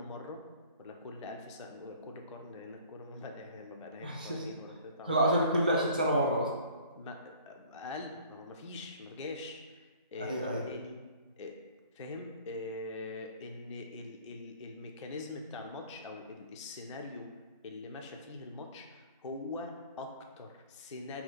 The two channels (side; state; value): both; inverted; correlation -0.51